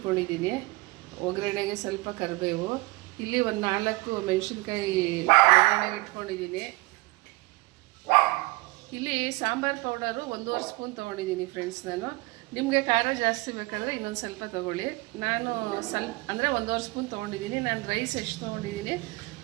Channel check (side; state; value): left; quieter; 22.4 dB